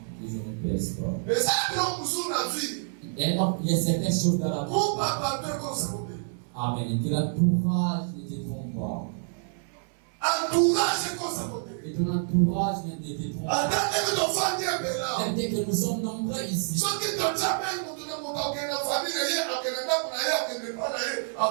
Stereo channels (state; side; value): silent; left; 59 dB below the other